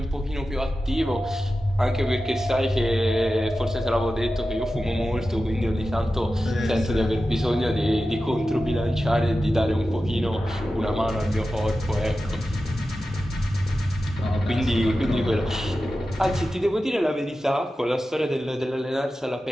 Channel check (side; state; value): both; normal; correlation 0.93